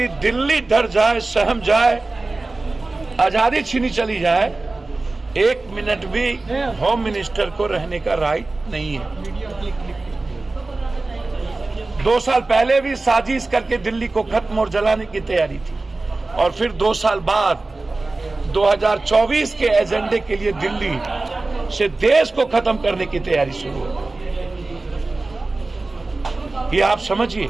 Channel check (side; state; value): left; quieter; 3.3 dB